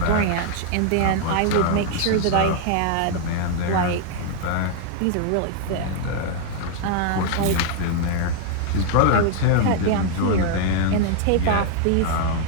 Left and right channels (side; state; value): both; different; correlation 0.00